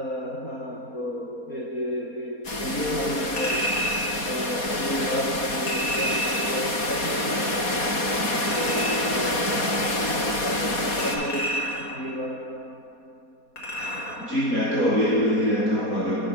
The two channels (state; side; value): late; right; 4.2 ms